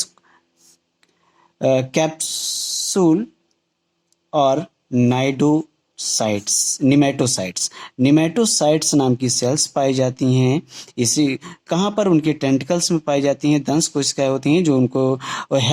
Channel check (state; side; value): identical; both; correlation 1.00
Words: कैप्सूल और निमेटोसाइट्स नाम की सेल्स पाई जाती हैं। इसी कहाँ पर? उनके टेंटिकल्स में पाई जाती हैं। दंश कोशिकाएं होती हैं जो उनको